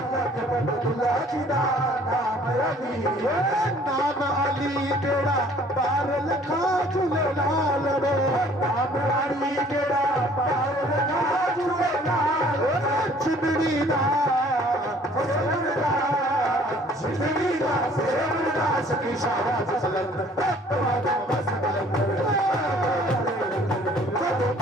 लखपत दुल्ला जी दा नाम अली है, नाम अली बेड़ा पार लखा झूलेलाल रे, नाम अली बेड़ा पार लखा झूलेलाल। चिमड़ी दा सेवनदा, जिंदगीदा सेवनदा, सखी शाबाश सलंदर, तुम्हारा मस्त कलंदर, तो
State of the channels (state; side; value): normal; both; correlation 0.55